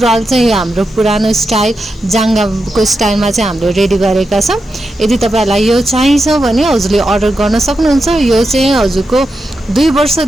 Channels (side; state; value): both; normal; correlation 0.88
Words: चाहिँ यो हाम्रो पुरानो स्टाइल जाङ्गाको स्टाइलमा चाहिँ हामीले रेडी गरेका छौँ। यदि तपाईँहरूलाई यो चाहिन्छ भने हजुरले अर्डर गर्न सक्नुहुन्छ। यो चाहिँ हजुरको 2